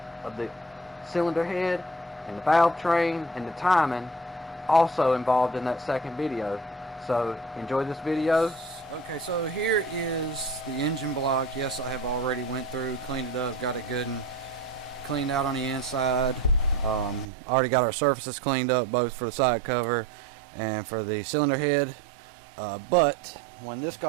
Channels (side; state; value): left; drops out; at 17.2 s